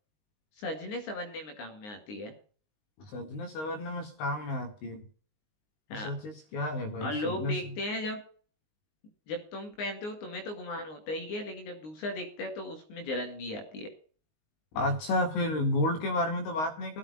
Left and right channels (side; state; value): right; late; 19 ms